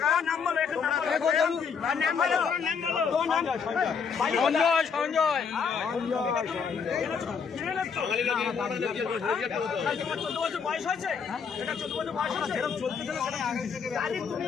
সঞ্জয় 14 বছর বয়স হয়েছে, এটা 14 বছর বয়স হয়েছে, এরকম চলতে চলে তুমি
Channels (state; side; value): quieter; right; 6.2 dB